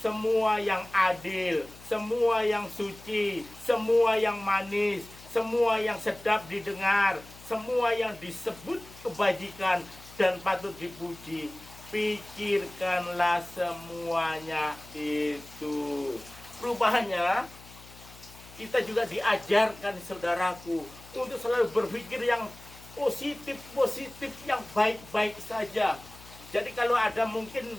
semua yang adil, semua yang suci, semua yang manis, semua yang sedap didengar, semua yang disebut kebajikan dan patut dipuji, pikirkanlah semuanya itu. Rupanya kita juga diajarkan, saudaraku, untuk selalu berpikir yang positif, yang baik-baik saja. Jadi kalau ada mungkin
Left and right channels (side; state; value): left; noise; hum, 20 dB below the sound